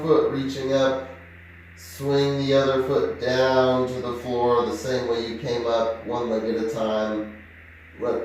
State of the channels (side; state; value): both; identical; correlation 1.00